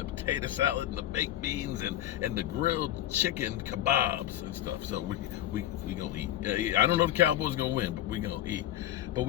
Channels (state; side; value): quieter; right; 12.9 dB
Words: potato salad and the baked beans and the grilled chicken kebabs and stuff. So we gonna eat. I don't know if the Cowboys gonna win, but we gonna eat. But